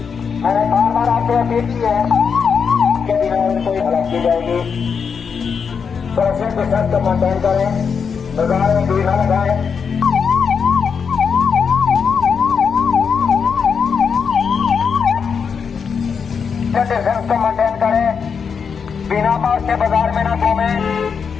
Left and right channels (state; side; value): quieter; right; 6.2 dB